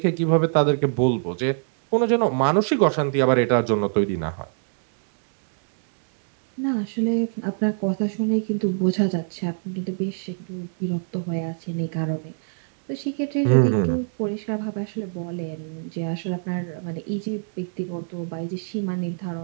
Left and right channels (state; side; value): silent; left; digital silence